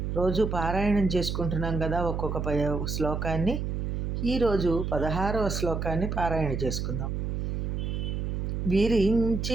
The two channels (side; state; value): right; noise; hum, 2 dB below the sound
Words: రోజు పారాయణం చేసుకుంటున్నాం కదా. ఒక్కొక్క శ్లోకాన్ని ఈరోజు 16వ శ్లోకాన్ని పారాయణ చేసుకుందాం.